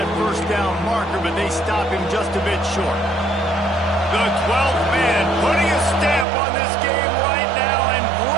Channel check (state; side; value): drops out; left; at 6.2 s